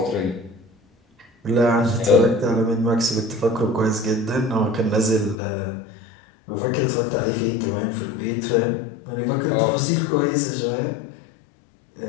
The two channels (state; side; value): drops out; right; at 5.4 s